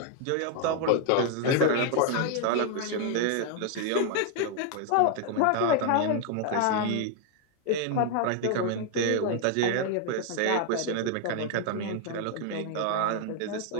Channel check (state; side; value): different; both; correlation 0.00